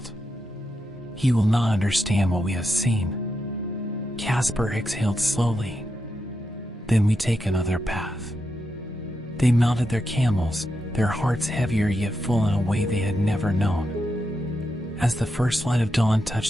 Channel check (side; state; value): both; normal; correlation 0.85